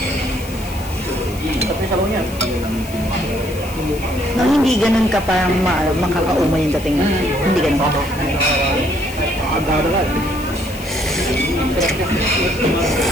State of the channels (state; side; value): noise; left; hiss, 17 dB below the sound